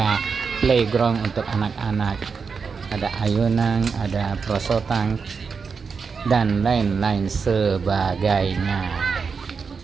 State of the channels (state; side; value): quieter; left; 5.4 dB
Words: playground untuk anak-anak, ada ayunan, ada perosotan, dan lain-lain sebagainya.